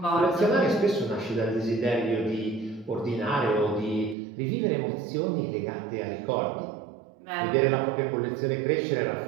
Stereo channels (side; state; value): left; drops out; at 4.2 s